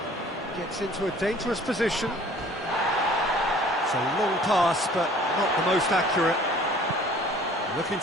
Gets into a dangerous position. It's a long pass, but not the most accurate. Looking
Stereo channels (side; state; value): both; normal; correlation 0.51